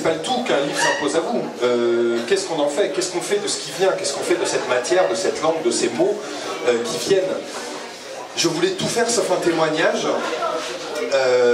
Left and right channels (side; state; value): both; identical; correlation 1.00